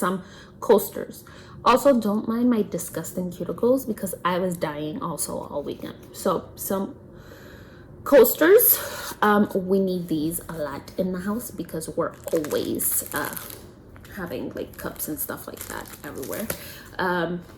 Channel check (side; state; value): both; identical; correlation 1.00